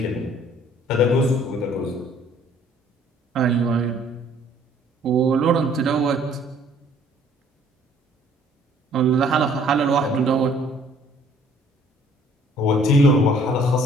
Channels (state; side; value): normal; both; correlation 0.58